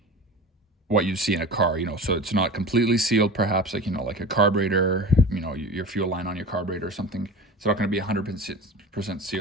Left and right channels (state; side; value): normal; both; correlation 0.34